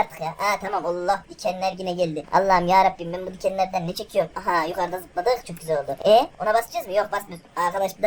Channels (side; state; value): both; identical; correlation 1.00